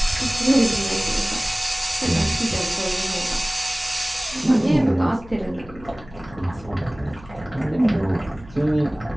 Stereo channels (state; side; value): noise; left; hum, 20 dB below the sound